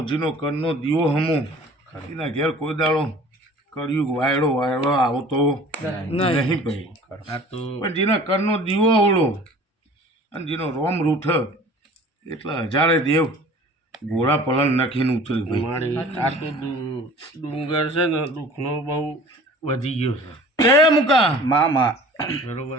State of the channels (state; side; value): normal; both; correlation 0.46